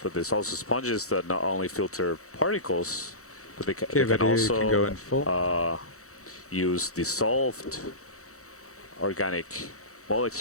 there's also sponges that not only filter particles, but they, Okay, they can video, you can go also in full. use dissolved organic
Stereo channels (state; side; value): late; right; 0.65 ms